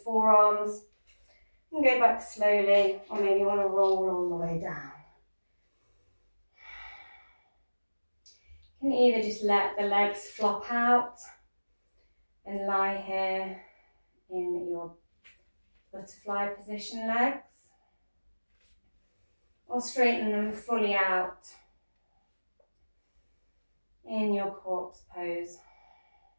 forearms. And go back slowly, or maybe you want to roll all the way down. You can either just let the legs flop out and lie here in your butterfly position legs, or straighten them fully out in your corpse pose,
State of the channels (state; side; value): inverted; both; correlation -1.00